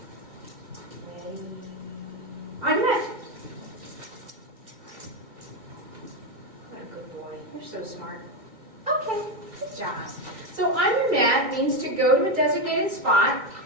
On your mat. So smart. Okay, good job. So on your mat means to go to a designated spot,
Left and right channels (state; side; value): late; left; 2.5 ms